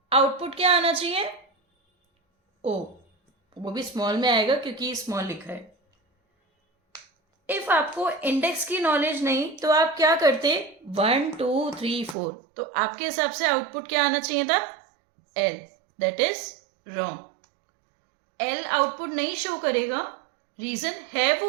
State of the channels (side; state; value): left; drops out; at 12.2 s